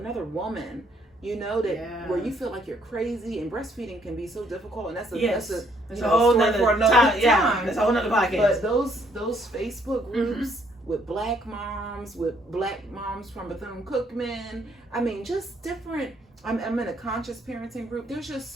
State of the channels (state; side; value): normal; both; correlation 0.67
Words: woman, where you feel like you're crazy, and breastfeeding can be so difficult. And that's a whole story for another time. Yeah, that's a whole nother podcast. But those Facebook groups with Black moms from Bethune-Cookman, I mean, just different. I'm in a conscious parenting group. There's just